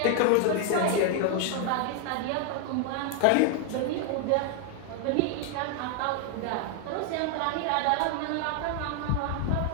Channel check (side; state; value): both; different; correlation 0.00